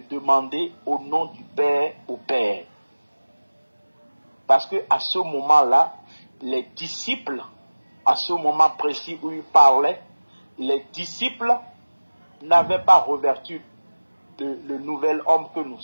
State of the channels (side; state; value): both; inverted; correlation -1.00